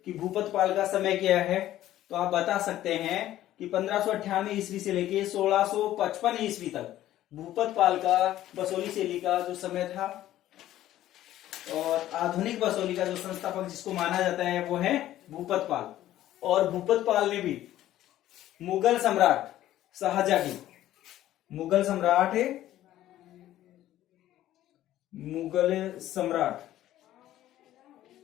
कि भूपतपाल का समय क्या है तो आप बता सकते हैं कि 1598 ईस्वी से लेके 1655 ईस्वी तक भूपतपाल का बसोली शैली का जो समय था। और आधुनिक बसोली का जो संस्थापक जिसको माना जाता है वो है भूपतपाल। और भूपतपाल ने भी मुगल सम्राट शाहजहां की, मुगल सम्राट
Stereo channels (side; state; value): right; quieter; 13.6 dB